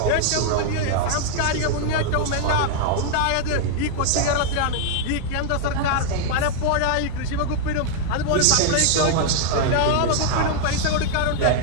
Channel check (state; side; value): different; both; correlation -0.01